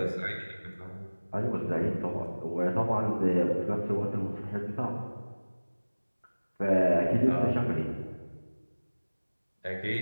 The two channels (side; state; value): both; inverted; correlation -1.00